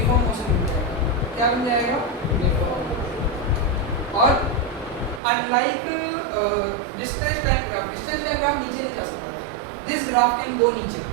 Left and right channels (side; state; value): left; drops out; at 5.2 s